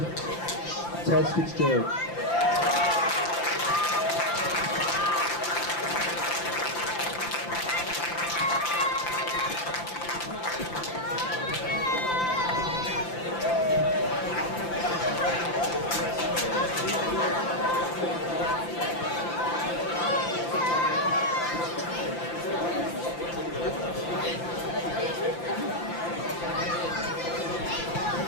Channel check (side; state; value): right; late; 5.8 ms